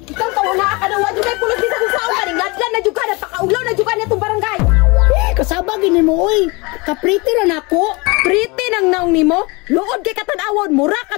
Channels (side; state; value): right; quieter; 26.7 dB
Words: Ikaw tawo na ka na wa jud kay pulos bisan sa ulan, ngadlan na jud ka napakaulaw na jud ka nitong barangay. Kasaba gini mo oy. Kapriti ra nako. Pretty nang naong nimo, luod kay katan-awon, mura